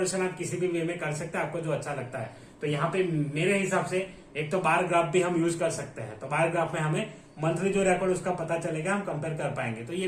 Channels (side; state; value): both; identical; correlation 1.00